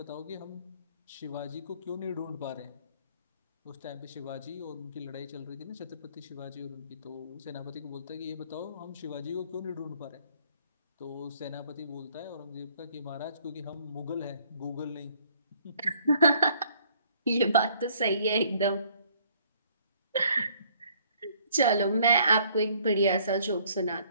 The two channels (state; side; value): inverted; both; correlation -0.61